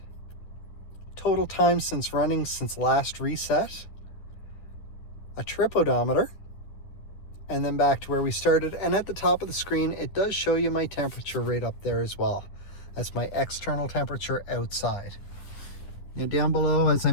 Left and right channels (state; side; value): late; right; 10 ms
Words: total time since running since last reset, a trip odometer, and then back to where we started. And at the top of the screen, it does show you my temperature right up there as well. That's my external temperature outside. Now down below, as I